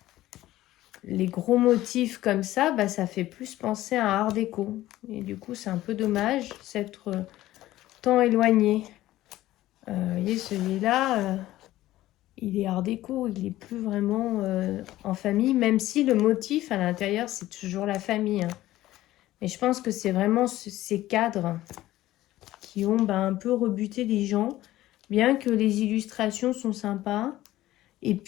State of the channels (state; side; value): quieter; right; 15.5 dB